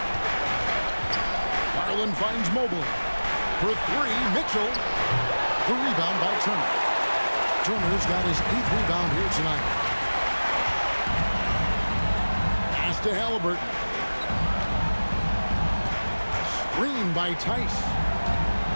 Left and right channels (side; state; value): both; inverted; correlation -1.00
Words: Garland finds Mobley. For 3, Mitchell. The rebound by Turner. Turner's got his 8th rebound here tonight. Pass to Halliburton. Screen by Tice.